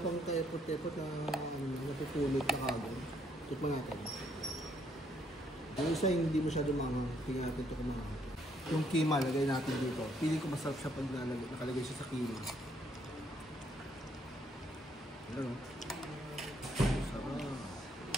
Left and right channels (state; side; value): normal; both; correlation 0.70